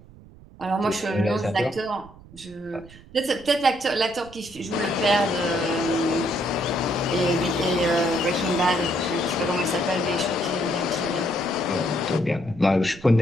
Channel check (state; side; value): noise; right; rumble, 21 dB below the sound